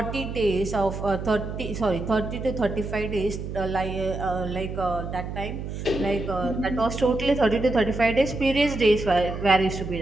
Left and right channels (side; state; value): right; noise; hum, 7 dB below the sound